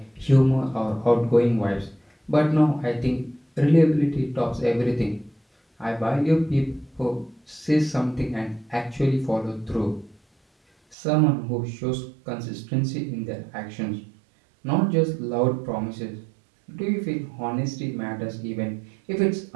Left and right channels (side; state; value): left; drops out; at 11.0 s